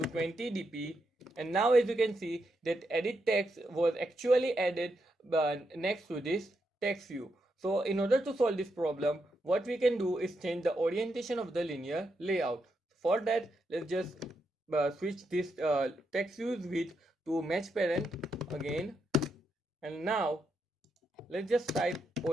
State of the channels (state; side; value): normal; both; correlation 0.82